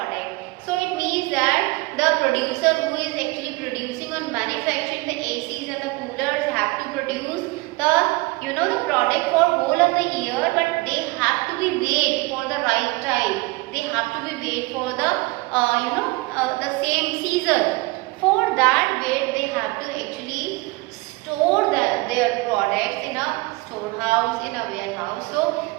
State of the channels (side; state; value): left; quieter; 23.5 dB